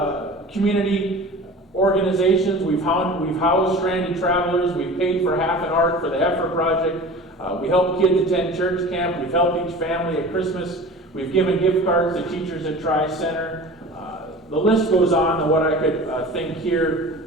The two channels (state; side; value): normal; both; correlation 0.38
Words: community organizations. We've housed stranded travelers. We've paid for half an ark for the Heifer Project. We help kids attend church camp. We've helped each family at Christmas. We've given gift cards to teachers at Tri-Center. The list goes on to what I could think